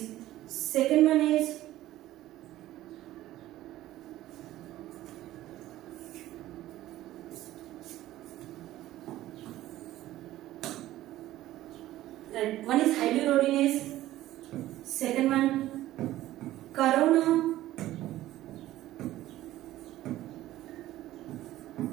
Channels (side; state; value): left; quieter; 14.9 dB